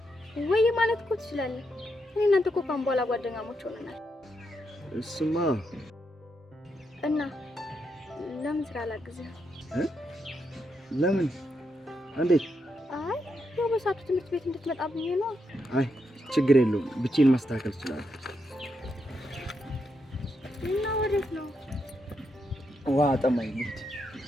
ወይ ማለት እኮ ትችላለህ። እኔ እናንተ እኮ ካሁን በኋላ ጓደኛሞች ሆነናል። እሱማ እና ለምን ስራ ላግዝህ? ለምን? እንዴት? አይ ያው በሰዓቱ ትምህርት ቤት እንድትመጣ ብዬ ነው። አይ ችግር የለውም፣ ብቻዬን ማስተካከል እችላለሁ። እና ወዴት ነው? ውሃ ጠማኝ ልሂድ።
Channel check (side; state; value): both; normal; correlation 0.81